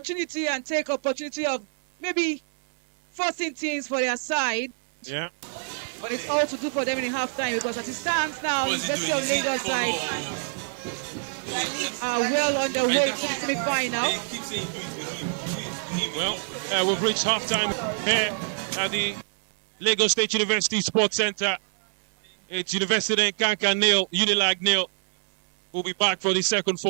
and take opportunity of maybe forcing teams for their side. Yeah. But it's all to do for them in halftime because as it stands now, the University of Lagos side are well on their way to the semi-final. Well, we've reached halftime here at the Lagos State University Sports Center. It's University and Kankan nil, Unilag nil. We'll be back for the second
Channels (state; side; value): silent; left; digital silence